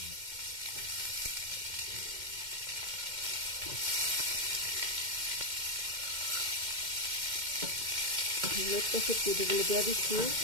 লটকা শুটকিগুলো দিয়ে দিচ্ছি।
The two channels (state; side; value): late; left; 2.1 ms